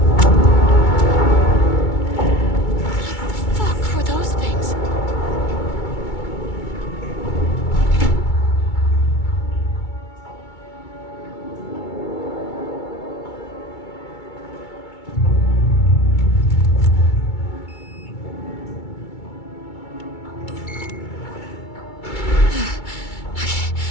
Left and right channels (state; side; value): late; right; 2.3 ms